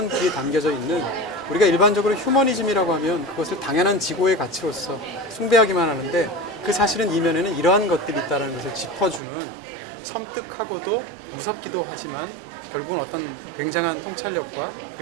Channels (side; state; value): left; drops out; at 9.2 s